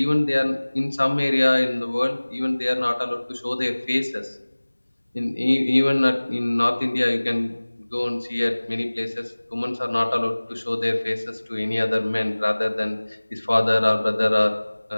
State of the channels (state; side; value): inverted; both; correlation -1.00